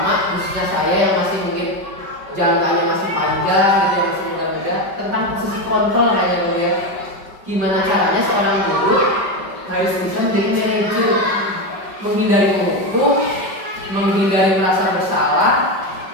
khususnya saya yang masih mungkin jangkanya masih panjang gitu, yang masih muda-muda, tentang posisi kontrol hanya ya. Gimana caranya seorang guru harus bisa menjadi manajer, menghindari menghukum, menghindari merasa bersalah.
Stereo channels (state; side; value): late; left; 5.2 ms